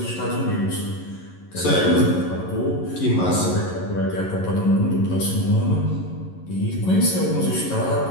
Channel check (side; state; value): right; late; 11 ms